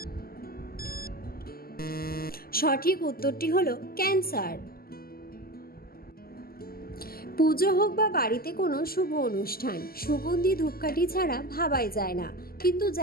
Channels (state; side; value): late; right; 0.43 ms